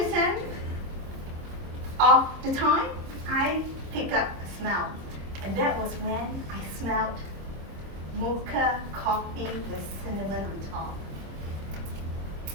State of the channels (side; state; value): left; late; 26 ms